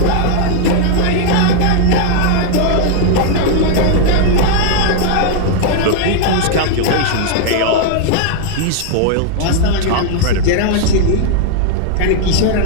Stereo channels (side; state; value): both; different; correlation 0.00